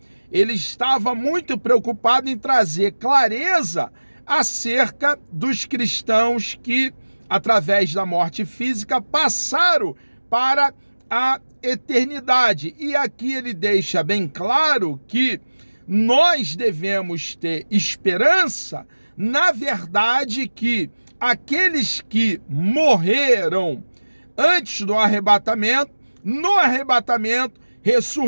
ele estava muito preocupado em trazer clareza acerca dos cristãos que, através da morte física, passaram para a eternidade. E aqui ele deixa bem claro que nós devemos ter esperança, na verdade, que aqueles que morreram antes do arrebatamento, no arrebatamento,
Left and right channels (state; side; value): inverted; both; correlation -1.00